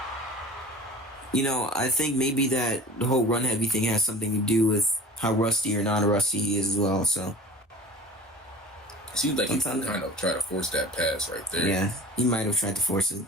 You know, I think maybe that the whole run heavy thing has something to do with how rusty or non-rusty he is as well. So it seems like he kind of tried to force that pass right there. Yeah, he might have tried to force it.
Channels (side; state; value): both; normal; correlation 0.41